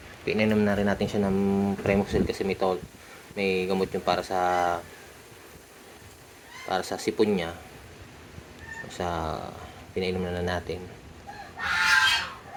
pinainom na rin natin siya ng Premoxil kasi may gamot yung para sa sipon niya. Pinainom na natin.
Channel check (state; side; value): identical; both; correlation 1.00